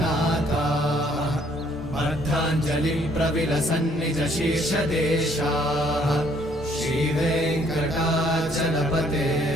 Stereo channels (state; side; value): normal; both; correlation 0.64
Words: अर्धाञ्जलिं प्रविलसन्निज शीर्षदेशाः श्रीवेङ्कटाचलपते